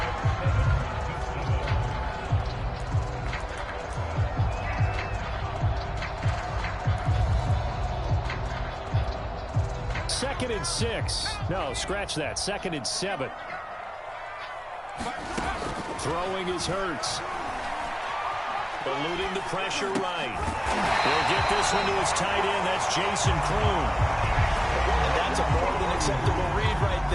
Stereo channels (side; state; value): both; identical; correlation 1.00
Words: Second and 6. No, scratch that. Second and 7. Throwing is Hurts. Eluding the pressure right. He'll get this one to his tight end. That's Jason Kroon. And that's a more than acceptable read right